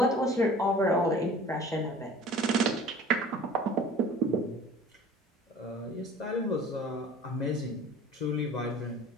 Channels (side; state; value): both; normal; correlation 0.46